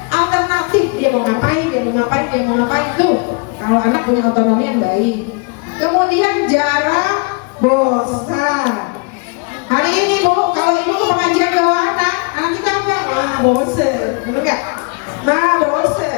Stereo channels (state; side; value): quieter; right; 32.3 dB